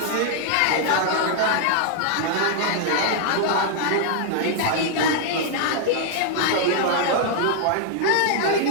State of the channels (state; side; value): different; both; correlation 0.00